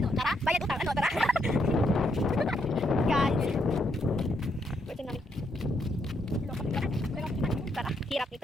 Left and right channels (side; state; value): both; normal; correlation 0.76